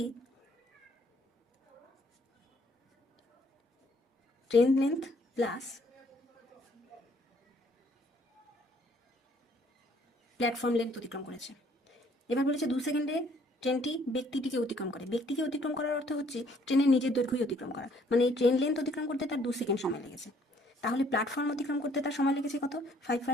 train length plus platform length অতিক্রম করেছে। এবার বলেছে 2 সেকেন্ডে ট্রেনটি ব্যক্তিটিকে অতিক্রম করে। ব্যক্তিকে অতিক্রম করার অর্থ হচ্ছে ট্রেনের নিজের দৈর্ঘ্যই অতিক্রম করা, মানে এই ট্রেন লেন্থ অতিক্রম করতে তার 2 সেকেন্ড সময় লেগেছে। তাহলে প্ল্যাটফর্ম অতিক্রম করতে তার সময় লেগেছে কত?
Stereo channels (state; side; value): normal; both; correlation 0.63